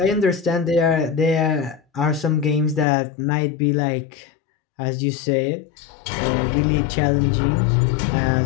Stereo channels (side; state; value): right; drops out; at 2.9 s